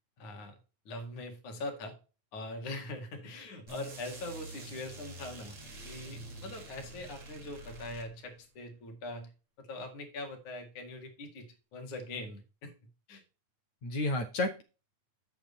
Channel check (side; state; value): right; late; 8.7 ms